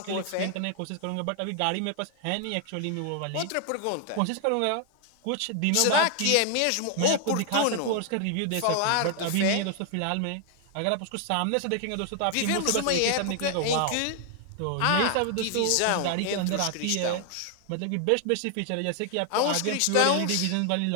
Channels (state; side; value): different; both; correlation 0.00